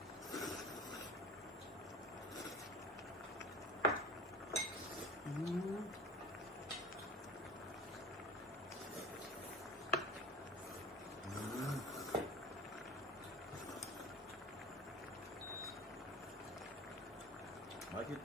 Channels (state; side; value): normal; both; correlation 0.38